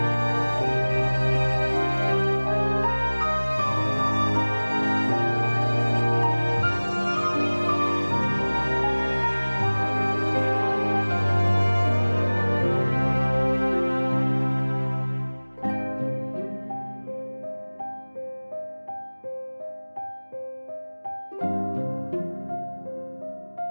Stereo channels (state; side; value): inverted; both; correlation -1.00